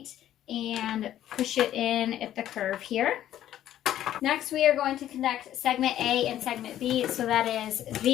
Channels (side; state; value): right; quieter; 12.1 dB